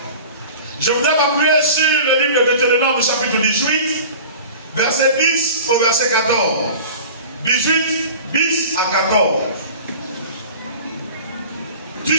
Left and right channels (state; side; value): inverted; both; correlation -0.39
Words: Je voudrais m'appuyer sur le livre de Deutéronome, chapitre 18, verset 10 au verset 14. 18, 10 à 14. Tu